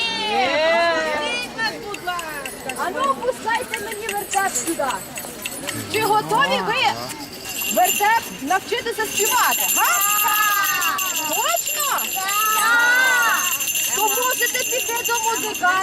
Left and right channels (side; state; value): both; identical; correlation 1.00